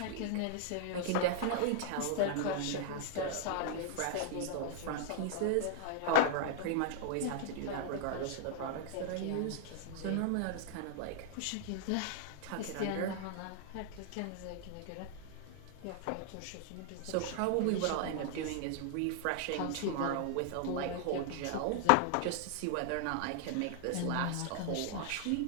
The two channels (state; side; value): different; both; correlation -0.01